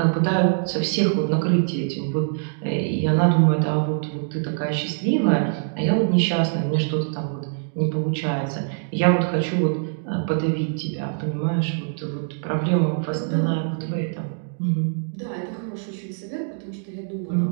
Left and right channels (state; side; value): silent; left; digital silence